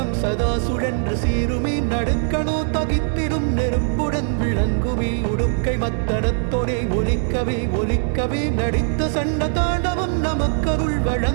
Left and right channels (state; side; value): silent; left; 58 dB below the other